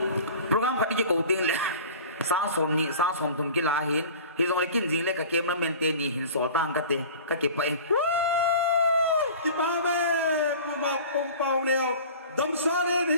program ka ki ko ting le sang som thum ki la hin hi zong le kin jing le ka camera man te ni hin sol tang ka te ka ke pai ki pa be puma pum pau neo dam sarin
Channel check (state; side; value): inverted; both; correlation -0.41